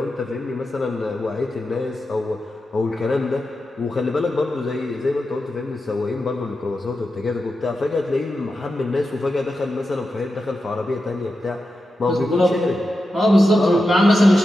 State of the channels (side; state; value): both; normal; correlation 0.90